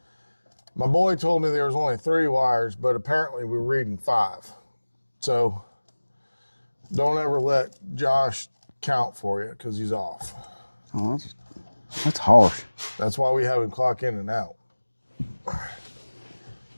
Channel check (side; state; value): both; inverted; correlation -1.00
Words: My boy told me there was only 3 wires, but apparently we're reading 5. So don't ever let Josh count for you because he's off. Oh, that's harsh. That's why we have him clock in and out.